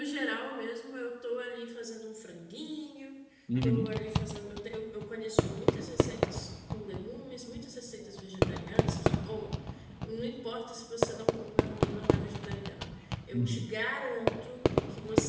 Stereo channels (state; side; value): identical; both; correlation 1.00